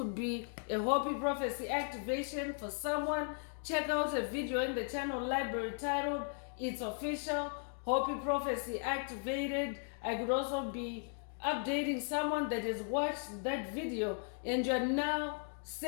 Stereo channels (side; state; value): right; silent; 53 dB below the other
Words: be a Hopi prophecy activation for someone. Check out a video in the channel library titled It's Official, Hopi Prophecy Activated. I could also be updating someone that has watched that video and you're now